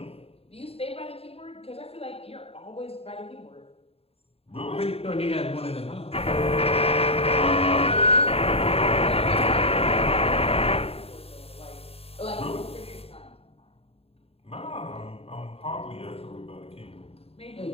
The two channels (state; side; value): late; right; 0.28 ms